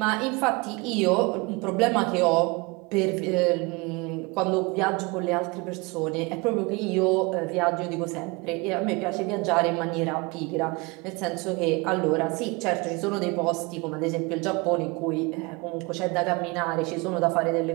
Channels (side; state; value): left; quieter; 26.5 dB